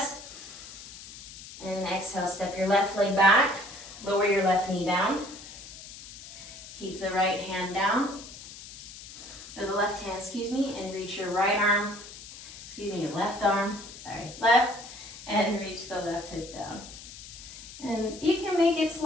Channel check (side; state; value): left; noise; hiss, 15 dB below the sound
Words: And exhale, step your left leg back. Lower your left knee down. Keep the right hand down. Or the left hand, and reach your right arm. Your left arm. Left. And reach the left hip down. And you can make it